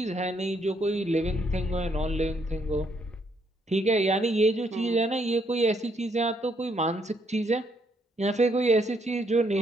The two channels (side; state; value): both; normal; correlation 0.72